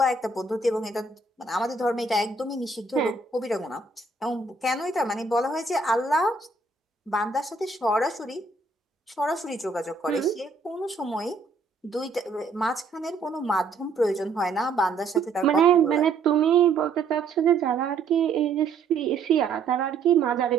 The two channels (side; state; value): left; quieter; 4.1 dB